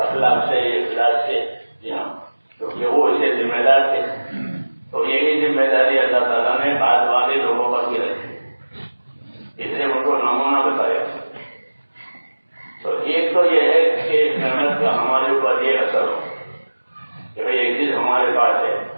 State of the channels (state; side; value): inverted; both; correlation -1.00